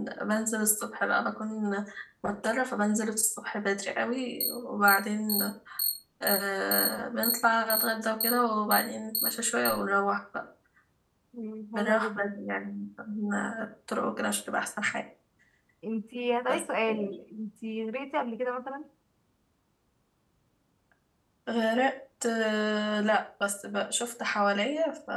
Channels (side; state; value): both; identical; correlation 1.00